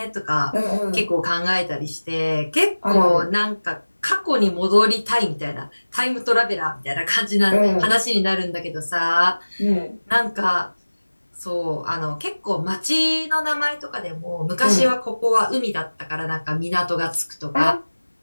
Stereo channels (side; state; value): both; inverted; correlation -1.00